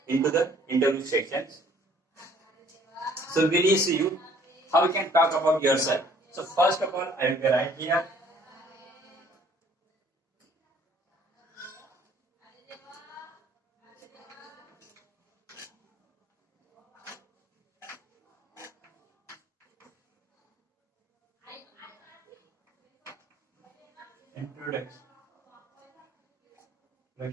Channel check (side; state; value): both; normal; correlation 0.58